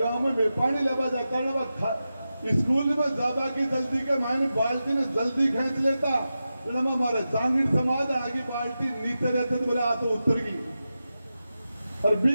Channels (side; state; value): both; inverted; correlation -0.92